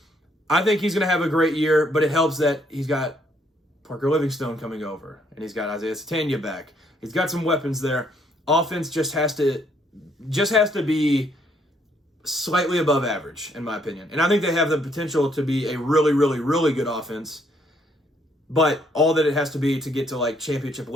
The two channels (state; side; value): normal; both; correlation 0.69